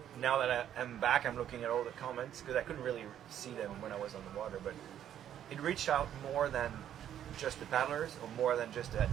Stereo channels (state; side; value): quieter; left; 10.5 dB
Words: now that I'm back, I'm looking at all the comments because I couldn't really see them when I was on the water. But it reached out more than just the paddlers, or more than just the